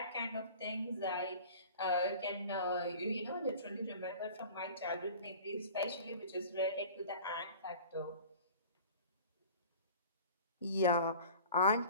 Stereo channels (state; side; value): inverted; both; correlation -0.41